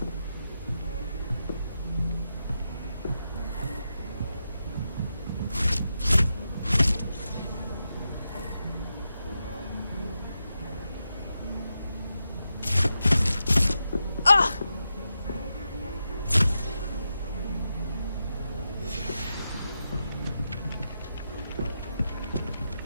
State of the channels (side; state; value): both; inverted; correlation -0.88